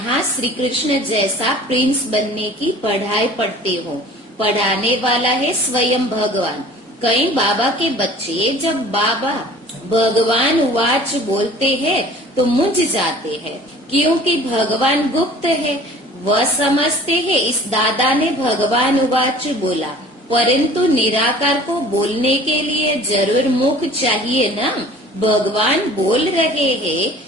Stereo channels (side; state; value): both; normal; correlation 0.46